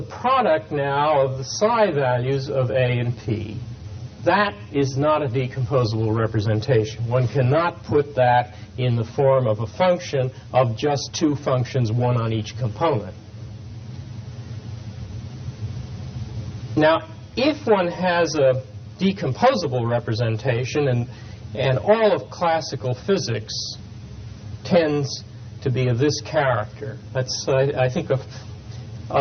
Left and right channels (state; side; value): identical; both; correlation 1.00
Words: product now of the psi values of A and P. That is not a decomposable representation. One cannot put that in the form of a function of just two functions, one on each component. Now, if one has a decomposable representation, and all of classical physics tends to be of this character. I think